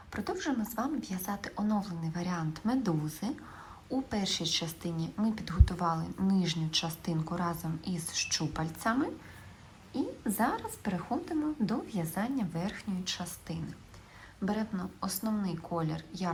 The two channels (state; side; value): identical; both; correlation 1.00